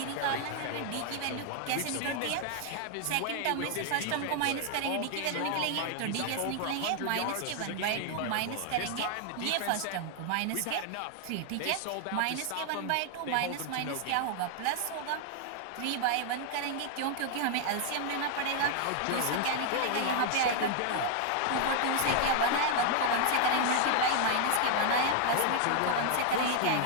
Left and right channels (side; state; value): both; different; correlation 0.00